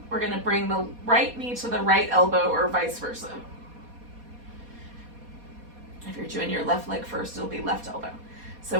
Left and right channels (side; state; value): left; late; 4.2 ms